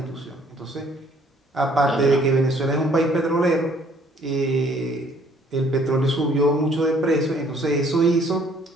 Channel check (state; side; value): normal; both; correlation 0.60